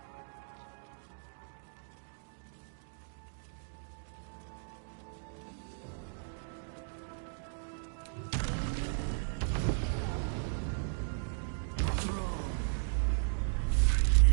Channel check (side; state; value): left; silent; digital silence